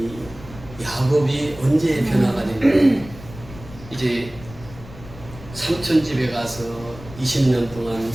야곱이 언제 변화가 됐냐? 이제 삼촌 집에 가서 20년 동안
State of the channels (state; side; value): noise; left; rumble, 17 dB below the sound